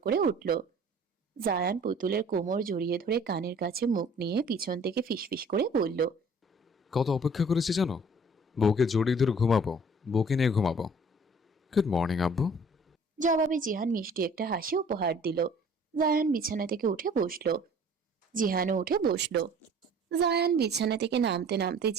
করে উঠল। জায়ান পুতুলের কোমর জড়িয়ে ধরে কানের কাছে মুখ নিয়ে পিছন থেকে ফিসফিস করে বলল, কত অপেক্ষা করেছি জানো? বউকে জড়িয়ে ধরে ঘুমাবো, বউকে নিয়ে ঘুমাবো। গুড মর্নিং আব্বু। জবাবে জিহান মিষ্টি একটা হাসি উপহার দিল। জায়ান বিছানা থেকে উঠে বসলো। জিহানও উঠে বসলো। জায়ান বিছানা থেকে নামতে নামতে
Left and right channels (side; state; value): both; normal; correlation 0.51